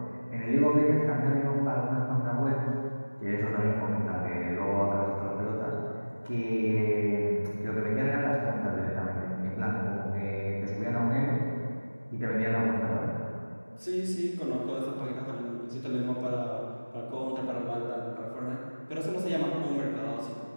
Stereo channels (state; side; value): inverted; both; correlation -1.00